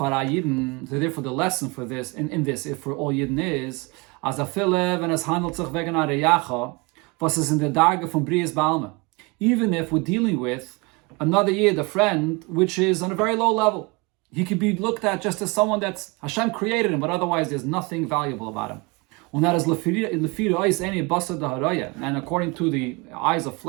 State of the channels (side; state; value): left; quieter; 27.1 dB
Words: Yidden. So therefore, the lesson for this, in this, if for all Yidden is, as a filev and as handelt sich wegen a reyacha, was is in the darge from Brias Balma. Even if we're dealing with another Yid, a friend, which is on a very low level, he could be looked at just as someone that's Hashem created him, but otherwise there's nothing valuable about him. And that is and according to the eyes of